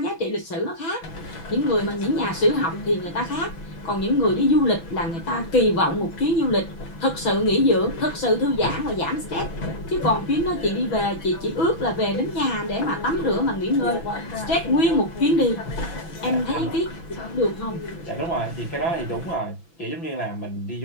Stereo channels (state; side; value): late; right; 6.0 ms